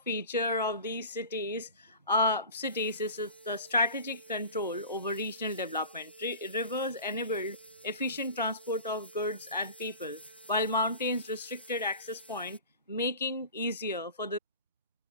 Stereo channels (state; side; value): inverted; both; correlation -0.37